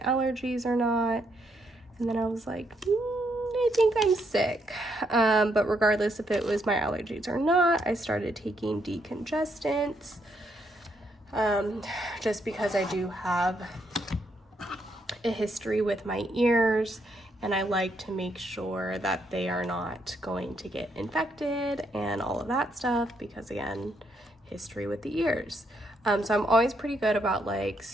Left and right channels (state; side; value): normal; both; correlation 0.76